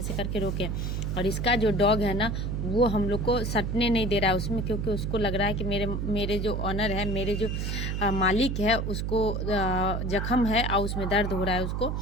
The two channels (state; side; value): noise; right; hum, 1 dB below the sound